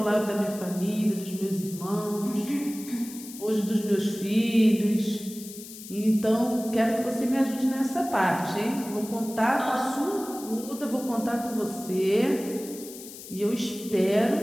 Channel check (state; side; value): noise; left; hiss, 14 dB below the sound